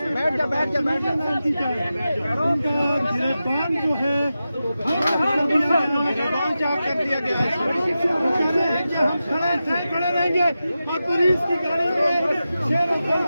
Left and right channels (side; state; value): both; inverted; correlation -0.92